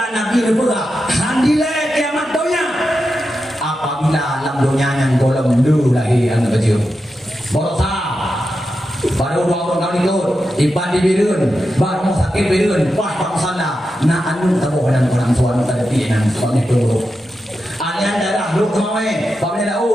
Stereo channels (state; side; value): normal; both; correlation 0.89